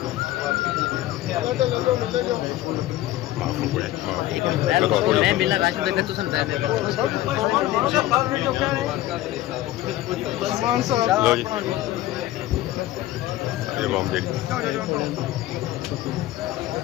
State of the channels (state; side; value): quieter; right; 15.1 dB